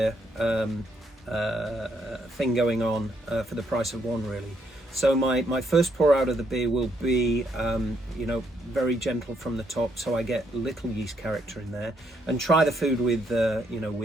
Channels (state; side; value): normal; both; correlation 0.74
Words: thing going on for the price of 1, really. So my first pour out of the beer will be very gentle from the top, so I get little yeast character in there, and try the food with